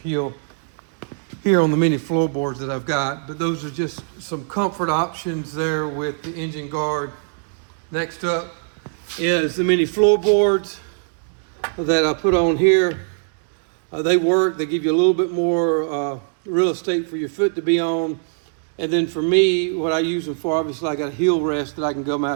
here on the mini floorboards that I've got. But those are just some comfort options there with the engine guard. Next up is the mini floorboards that I put on here. They work, they give you a little bit more real estate for your foot to be on. And then for me, what I use them for, obviously I got a heel rest that I can come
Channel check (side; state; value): left; silent; digital silence